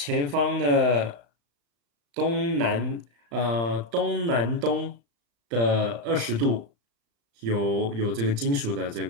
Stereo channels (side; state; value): left; late; 35 ms